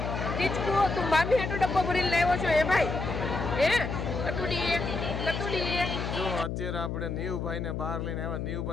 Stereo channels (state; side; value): noise; left; hum, 3 dB below the sound